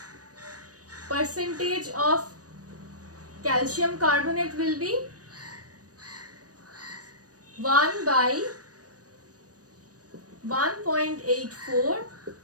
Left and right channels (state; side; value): late; left; 0.67 ms